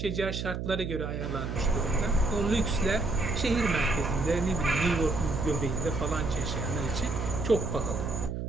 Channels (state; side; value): noise; right; hum, 4 dB below the sound